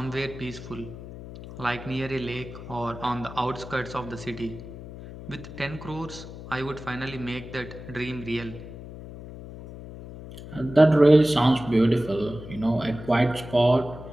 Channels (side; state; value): left; noise; hum, 13 dB below the sound